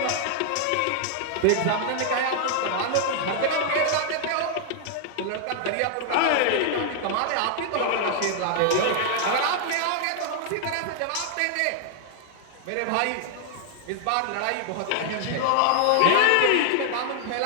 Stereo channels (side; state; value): both; different; correlation 0.00